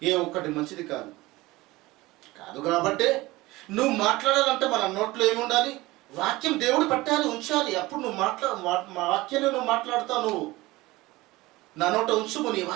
ఏ ఒక్కటి మంచిది కాదు. కాబట్టి నువ్వు మాట్లాడాలంటే మన నోట్లో ఏముండాలి? వాక్యం దేవుడు పెట్టాలి, ఉంచాలి. అప్పుడు నువ్వు వాక్యాన్ని నువ్వు మాట్లాడతావు. నువ్వు నా నోట ఉంచుము, నీ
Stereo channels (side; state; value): left; quieter; 19.9 dB